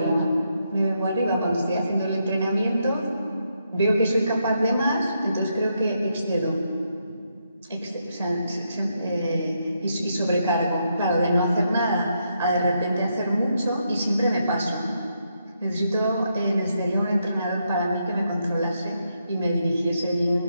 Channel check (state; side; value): inverted; both; correlation -0.80